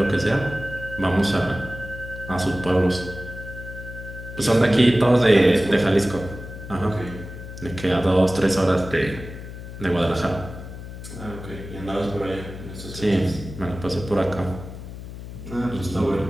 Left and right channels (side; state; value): left; noise; hum, 11 dB below the sound